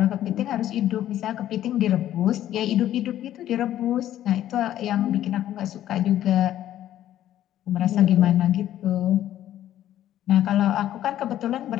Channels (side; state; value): right; quieter; 12.3 dB